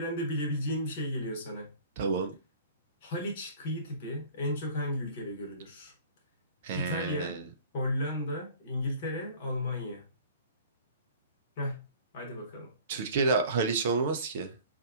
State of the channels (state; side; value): inverted; both; correlation -0.47